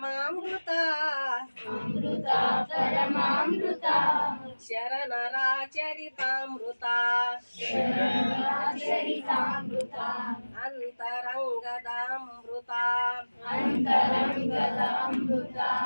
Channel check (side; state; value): both; inverted; correlation -1.00